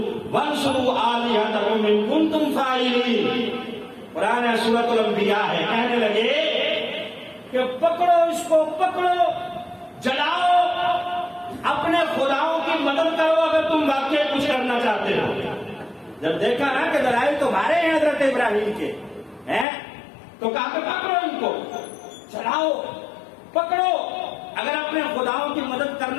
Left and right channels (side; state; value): right; drops out; at 19.7 s